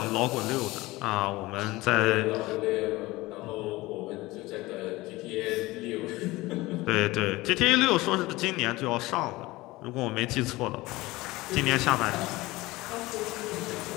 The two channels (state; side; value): quieter; right; 20.0 dB